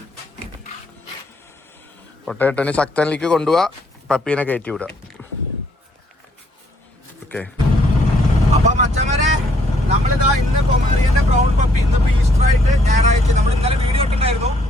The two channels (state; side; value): normal; both; correlation 0.68